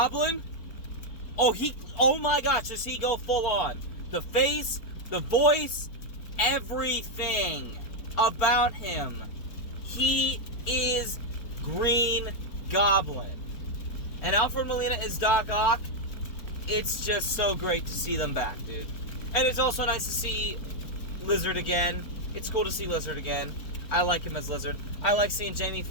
oh my gosh, does he go full on. The face, the voice, everything about him. He is Green Goblin. And Alfred Molina is Doc Ock. It's just so great to see them back, dude. And it's also nice to see Lizard again. It's cool to see Lizard again. I like him as Lizard. I like seeing Jamie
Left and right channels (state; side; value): late; right; 4.4 ms